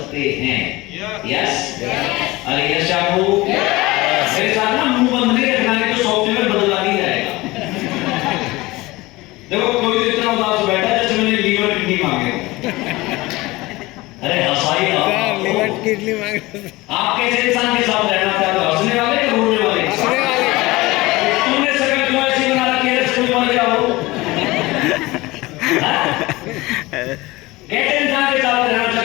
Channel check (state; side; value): quieter; right; 20.8 dB